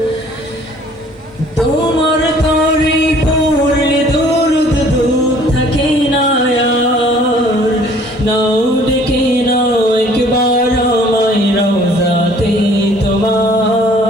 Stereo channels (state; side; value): normal; both; correlation 0.55